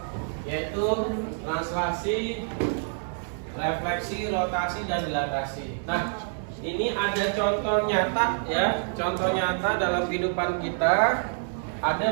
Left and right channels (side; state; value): left; silent; digital silence